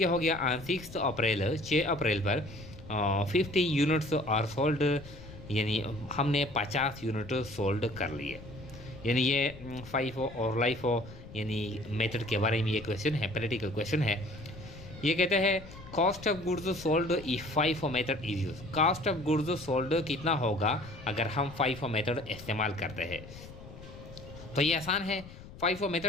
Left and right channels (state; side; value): noise; left; rumble, 16 dB below the sound